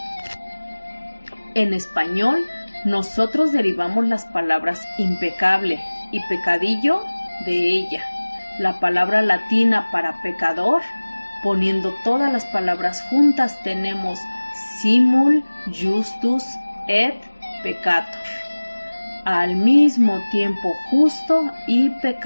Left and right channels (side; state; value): both; inverted; correlation -1.00